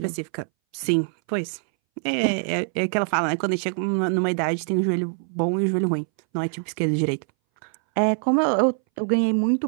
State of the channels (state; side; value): silent; left; 61 dB below the other